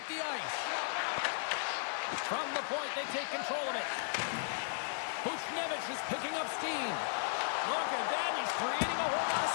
the ice. From the point, they take control of it. Buchnevich is picking up steam. Look at that, he's creating a whole lot of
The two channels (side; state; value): right; silent; 54 dB below the other